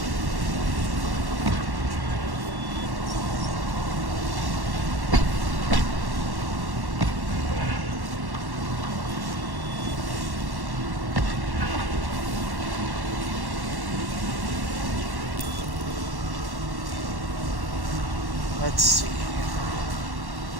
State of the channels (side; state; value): left; late; 1.1 ms